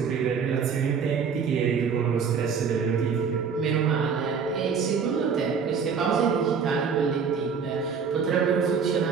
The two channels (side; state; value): left; quieter; 6.2 dB